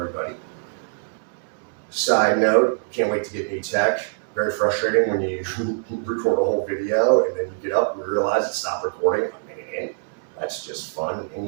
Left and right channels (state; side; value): silent; left; 63 dB below the other